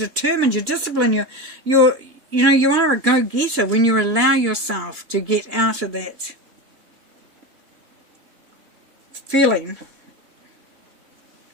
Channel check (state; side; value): late; left; 3.6 ms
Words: You're disciplined. You are a go-getter when you allow yourself to get out of that feeling.